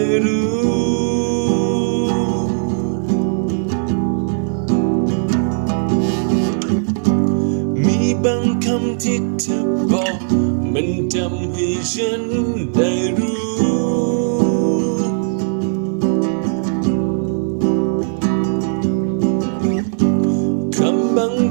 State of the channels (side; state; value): left; silent; 67 dB below the other